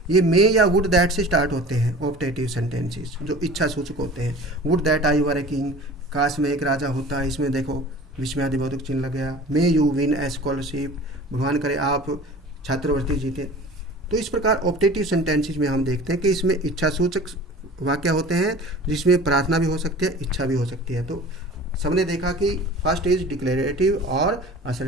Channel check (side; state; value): both; normal; correlation 0.41